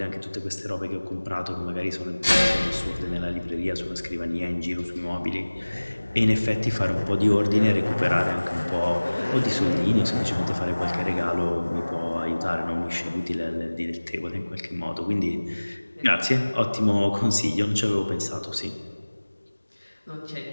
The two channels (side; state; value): both; inverted; correlation -1.00